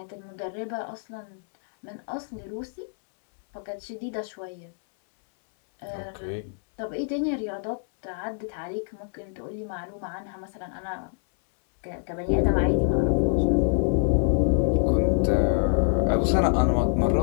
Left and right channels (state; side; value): silent; right; 61 dB below the other